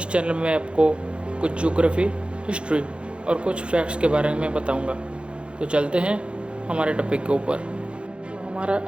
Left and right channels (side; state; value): left; late; 0.057 ms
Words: चैनल में आपको कुछ ज्योग्राफी, हिस्ट्री और कुछ फैक्ट्स के बारे में बताऊंगा। तो चलते हैं हमारे टॉपिक के ऊपर। तो हमारा